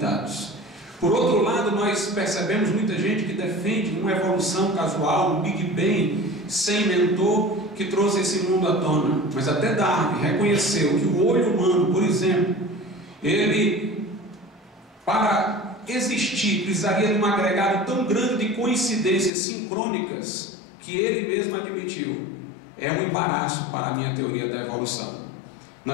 Por outro lado, nós percebemos muita gente que defende uma evolução casual, um Big Bang, sem mentor, que trouxe esse mundo à tona. Mas até Darwin reconheceu que o olho humano, por exemplo, ele, para existir, precisaria de um agregado tão grande de coincidências sincrônicas, que ele mesmo admitiu: é um embaraço para a minha teoria da evolução.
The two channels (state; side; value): drops out; right; at 19.3 s